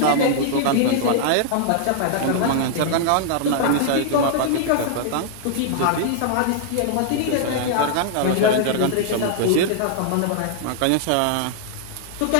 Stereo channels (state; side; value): different; both; correlation -0.01